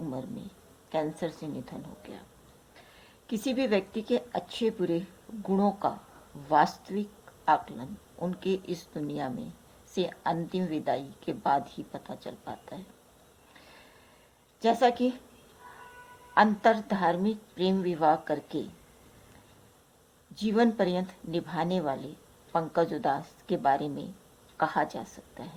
में कैंसर से निधन हो गया। किसी भी व्यक्ति के अच्छे बुरे गुणों का वास्तविक आकलन उनके इस दुनिया में से अंतिम विदाई के बाद ही पता चल पाता है। जैसा कि अंतर धार्मिक प्रेम विवाह करके जीवन पर्यंत निभाने वाले पंकज उधास के बारे में कहा जा सकता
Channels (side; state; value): both; identical; correlation 1.00